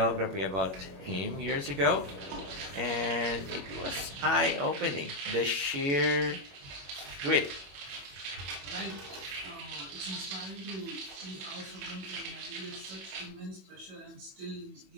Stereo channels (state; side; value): late; left; 21 ms